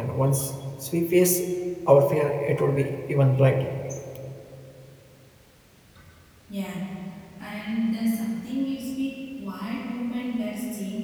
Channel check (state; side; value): identical; both; correlation 1.00